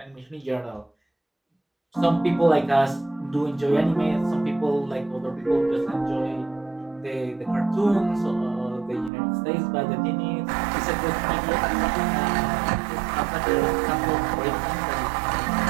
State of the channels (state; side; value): drops out; left; at 9.1 s